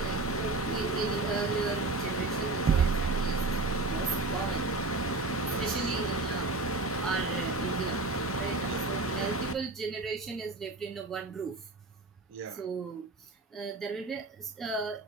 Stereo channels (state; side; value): quieter; left; 3.2 dB